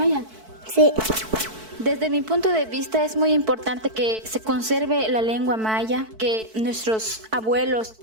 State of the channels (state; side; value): late; left; 4.6 ms